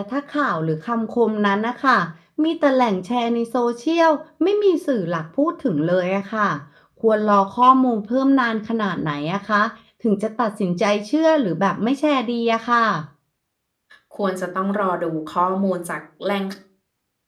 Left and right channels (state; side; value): identical; both; correlation 1.00